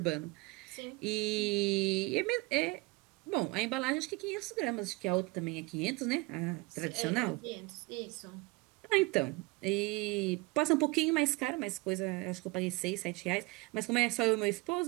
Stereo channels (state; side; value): quieter; left; 23.8 dB